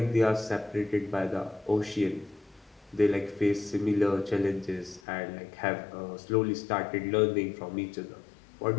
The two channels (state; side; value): drops out; right; at 5.0 s